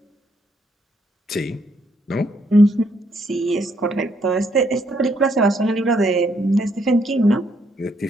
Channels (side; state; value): both; normal; correlation 0.73